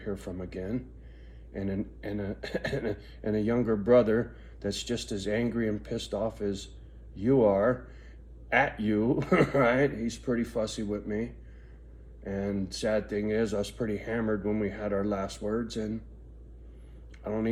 from again, and a younger brother that's just as angry and pissed off as you are at you, right? He's pretty fussy with me. And sad thing is, I was pretty hammered when we had our last words, and I don't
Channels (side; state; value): both; identical; correlation 1.00